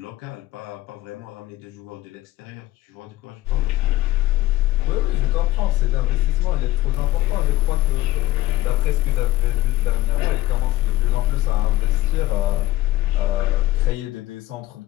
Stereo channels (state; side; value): quieter; right; 16.2 dB